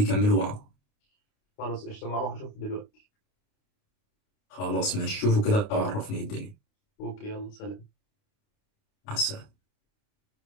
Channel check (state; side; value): late; right; 29 ms